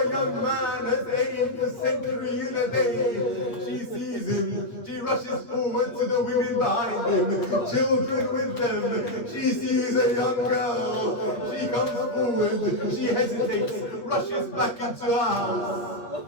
young man has aimed a century in a day. She sees him. She rushes forward to the women behind him, children with them. She sees a young girl. She comes forward. She hesitates, rushes back into her house.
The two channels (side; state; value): right; late; 8.5 ms